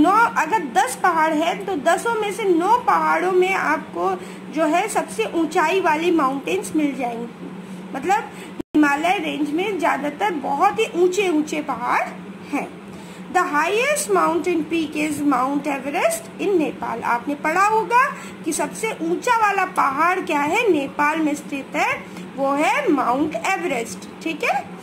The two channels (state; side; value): identical; both; correlation 1.00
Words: अगर 10 पहाड़ है तो 10 में से 9 पहाड़ों में आपको जो है सबसे ऊंचाई वाली माउंटेन्स मिल जाएंगी। मतलब हिमालय रेंज में ज्यादातर बहुत ही ऊंचे ऊंचे पहाड़ हैं। The highest mountain peak is Mount Everest in Nepal. आपने पढ़ा होगा कि सबसे ऊंचा वाला पहाड़ क्या है, नेपाल में स्थित है, वो है माउंट एवरेस्ट। ठीक है,